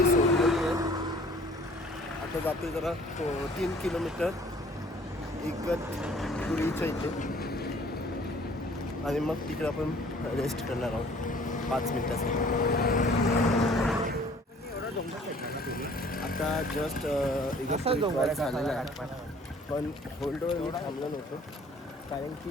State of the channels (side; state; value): both; normal; correlation 0.54